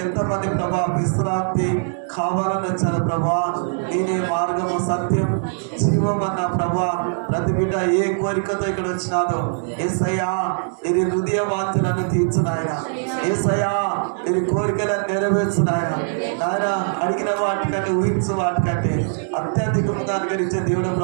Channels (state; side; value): silent; left; digital silence